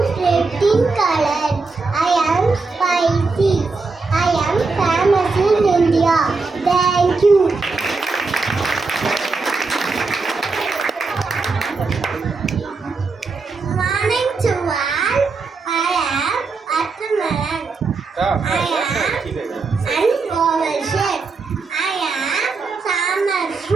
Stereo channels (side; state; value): left; quieter; 4.2 dB